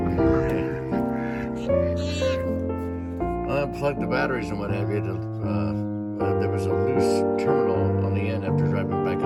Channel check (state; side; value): identical; both; correlation 1.00